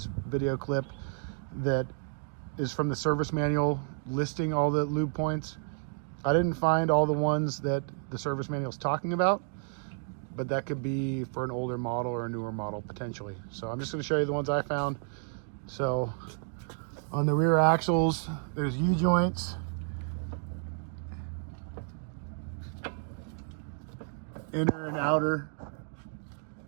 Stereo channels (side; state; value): left; silent; 57 dB below the other